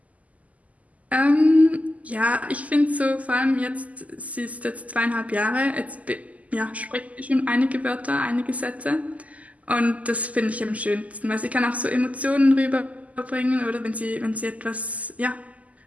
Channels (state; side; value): late; left; 0.073 ms